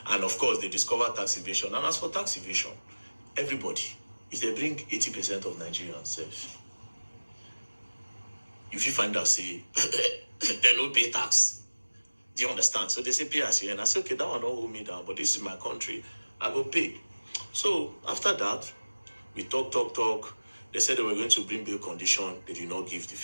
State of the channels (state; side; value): inverted; both; correlation -1.00